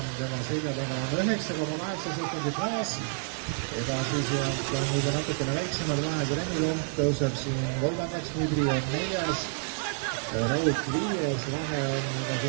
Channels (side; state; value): left; silent; 56 dB below the other